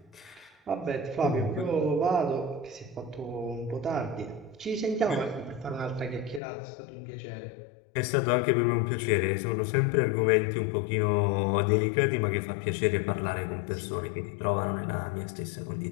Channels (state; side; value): drops out; right; at 6.4 s